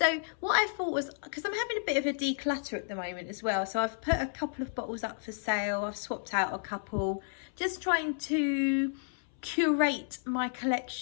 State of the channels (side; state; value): right; silent; 57 dB below the other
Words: what I thought was, because I'm having a bit of a declutter at the moment as well, so I've put a couple of bottles up for sale. I've swapped out a couple, just trying to curate my